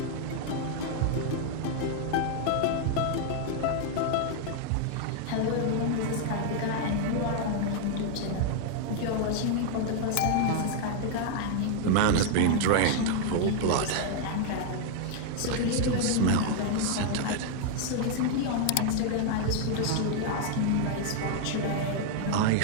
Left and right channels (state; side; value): different; both; correlation 0.00